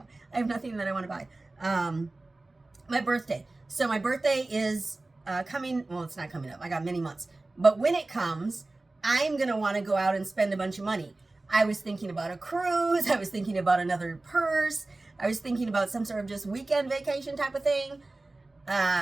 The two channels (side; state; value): left; quieter; 3.0 dB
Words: I have nothing that I want to buy. My birthday. So my birthday is coming. Well, it's not coming up. I got many months. But when it comes, I'm going to want to go out and spend a bunch of money. I was thinking about a cruise. I was thinking about another purse. I was thinking about some sort of just weekend vacation type of thing.